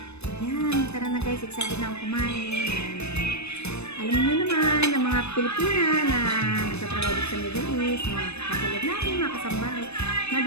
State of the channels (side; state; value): right; late; 0.80 ms